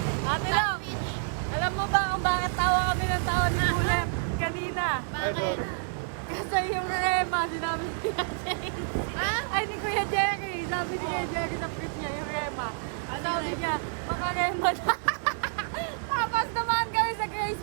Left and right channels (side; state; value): left; silent; digital silence